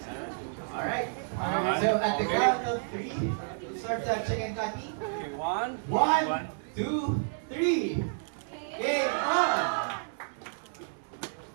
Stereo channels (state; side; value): silent; left; digital silence